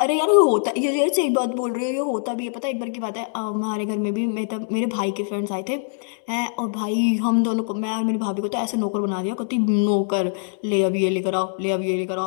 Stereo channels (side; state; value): right; silent; 63 dB below the other